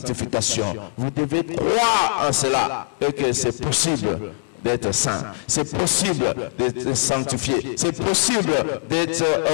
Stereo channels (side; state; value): right; silent; 64 dB below the other